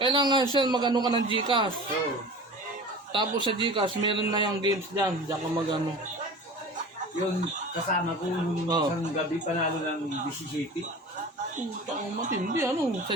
siya magano ka ng Gcash. So, Tapos sa Gcash, meron na yung games dyan. Diyan ka magano. yung kasama ko nung Oh. isang gabi panalo ng BCCP. Putang matindi, sa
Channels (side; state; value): both; normal; correlation 0.38